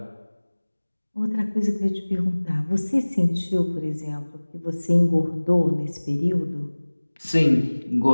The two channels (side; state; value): both; inverted; correlation -1.00